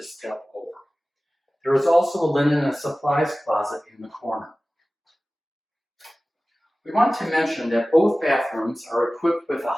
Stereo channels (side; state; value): both; normal; correlation 0.97